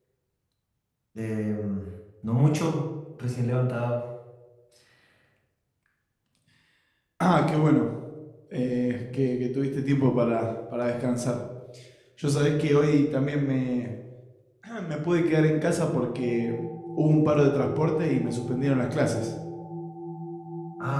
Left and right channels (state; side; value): identical; both; correlation 1.00